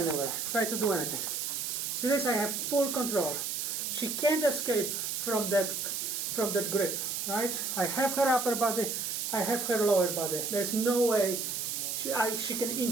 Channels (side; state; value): right; noise; hiss, 2 dB below the sound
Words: Try to do anything. See this? I have full control. She can't escape from that grip, right? I have her upper body. I have her lower body. There's no way she can